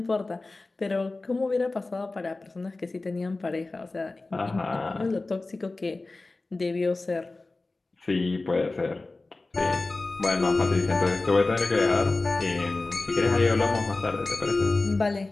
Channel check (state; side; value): quieter; right; 3.3 dB